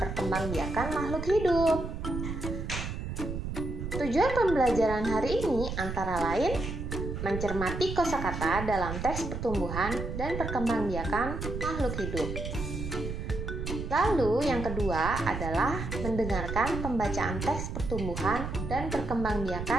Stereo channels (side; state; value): right; noise; rumble, 5 dB below the sound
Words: makhluk hidup. Tujuan pembelajaran hari ini antara lain mencermati kosakata dalam teks pertumbuhan dan perkembangbiakan makhluk hidup. Lalu yang kedua adalah mendengarkan pembacaan teks pertumbuhan dan